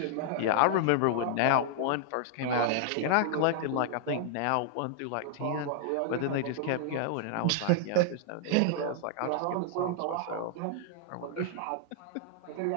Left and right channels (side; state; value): both; different; correlation -0.01